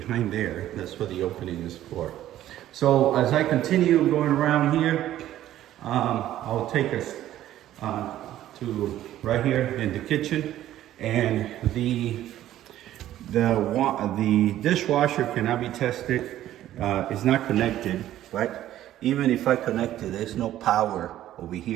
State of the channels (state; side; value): quieter; left; 13.0 dB